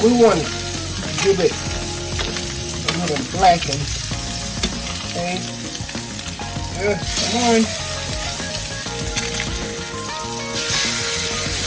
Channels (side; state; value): both; identical; correlation 1.00